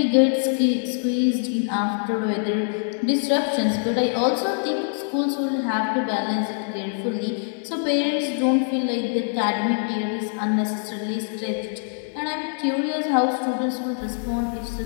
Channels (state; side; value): silent; right; digital silence